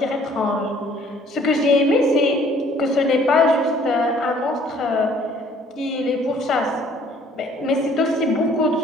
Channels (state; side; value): normal; both; correlation 0.58